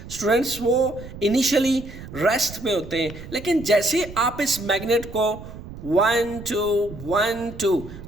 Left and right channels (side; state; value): right; noise; rumble, 14 dB below the sound